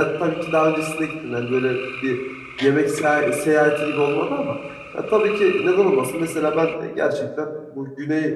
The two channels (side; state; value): both; identical; correlation 1.00